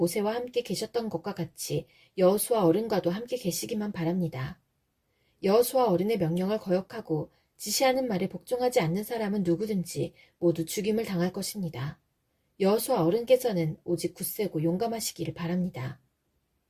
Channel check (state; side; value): identical; both; correlation 1.00